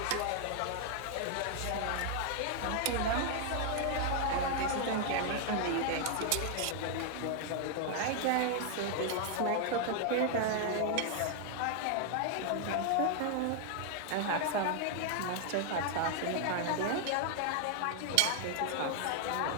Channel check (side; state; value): both; different; correlation 0.00